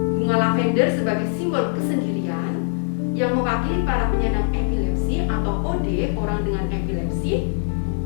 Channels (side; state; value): right; silent; 57 dB below the other